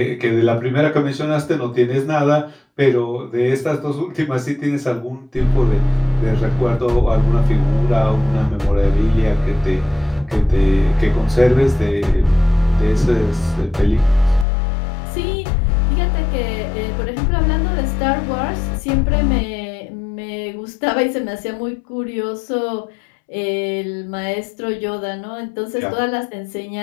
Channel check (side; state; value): right; drops out; at 14.5 s